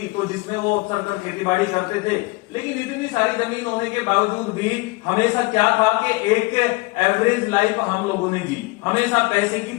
तो जिसमें वो अक्सर कर खेती बाड़ी करते थे। लेकिन इतनी सारी जमीन होने के बावजूद भी हमेशा क्या था कि एक एवरेज लाइफ हम लोगों ने जी। हमेशा पैसे की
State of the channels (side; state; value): right; quieter; 24.3 dB